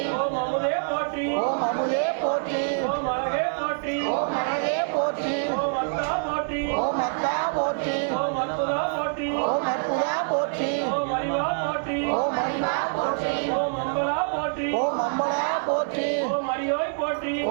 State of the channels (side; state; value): left; silent; 61 dB below the other